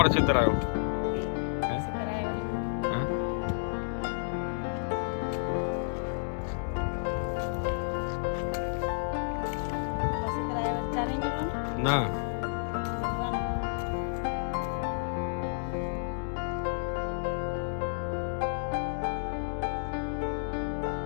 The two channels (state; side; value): silent; right; digital silence